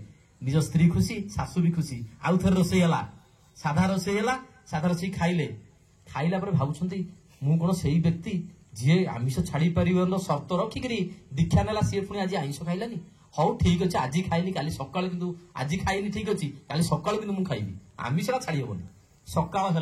ନିଜ ସ୍ତ୍ରୀ ଖୁସି, ଶାଶୁ ବି ଖୁସି। ଆଉ ଥରେ ରୋଷେଇ ହେଲା, ସାଧା ରୋଷେଇ ହେଲା। ସାଧା ରୋଷେଇ ଖାଇଲେ। ଖାଇଲା ପରେ ଭାବୁଛନ୍ତି, ମୁଁ କଣ ସେଇ ବ୍ୟକ୍ତି ଯିଏ ଆମିଷ ଛାଡି ପାରିବନ ସର୍ତ୍ତ ରଖିକିରି ଦୀକ୍ଷା ନେଲା, ସିଏ ପୁଣି ଆଜି ଆଇଁଷ ଖାଇଲାନି। ହଉ ଠିକ ଅଛି, ଆଜି ଖାଇଲି, କାଲି ସକାଳୁ କିନ୍ତୁ ଆଜି ଖାଇନି, ଠିକ ଅଛି, କାଲି ସକାଳୁ କିନ୍ତୁ ମୁଁ ଖାଇବି, ଆମିଷଟା ଛାଡି ହବନି। ସକାଳ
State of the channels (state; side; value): identical; both; correlation 1.00